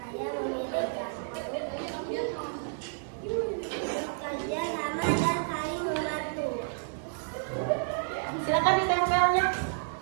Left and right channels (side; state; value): left; silent; 57 dB below the other